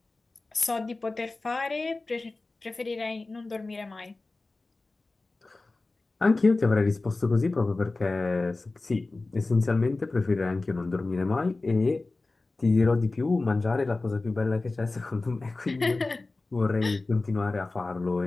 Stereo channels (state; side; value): quieter; right; 3.3 dB